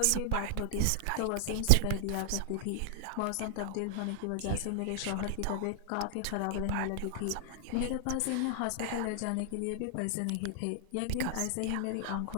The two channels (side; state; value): both; different; correlation -0.01